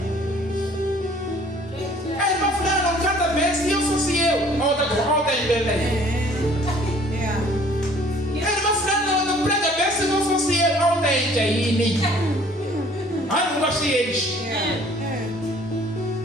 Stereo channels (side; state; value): both; normal; correlation 0.55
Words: Aí vai falar, não, cada vez se eu fosse eu, olha em Belém. Ele vai falar, não prega bem se não fosse eu. gente aí, nem. Ah, não gostei eles.